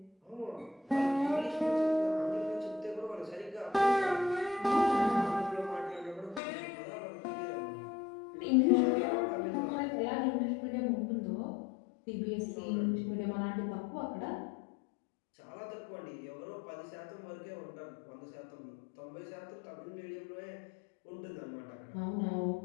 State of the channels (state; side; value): drops out; right; at 6.4 s